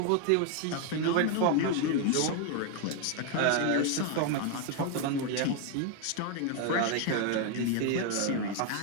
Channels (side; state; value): both; different; correlation 0.01